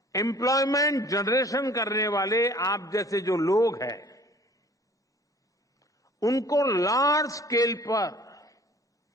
एम्प्लॉयमेंट जनरेशन करने वाले आप जैसे जो लोग हैं, उनको लार्ज स्केल पर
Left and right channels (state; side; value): normal; both; correlation 0.51